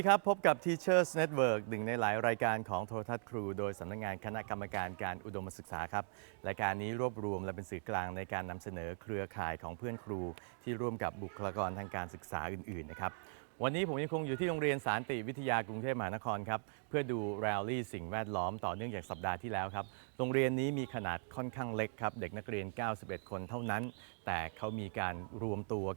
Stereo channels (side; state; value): left; silent; 52 dB below the other